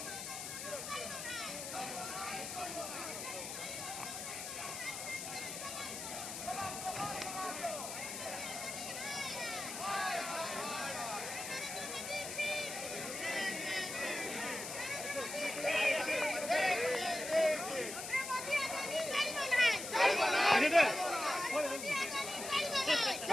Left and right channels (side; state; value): left; noise; hiss, 6 dB below the sound